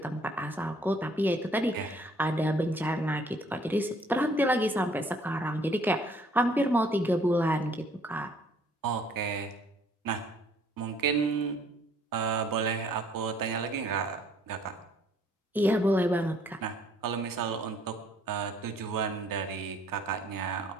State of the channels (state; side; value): normal; both; correlation 0.61